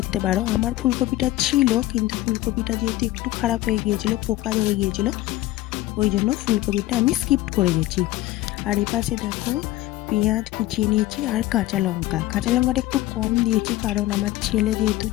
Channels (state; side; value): quieter; right; 16.3 dB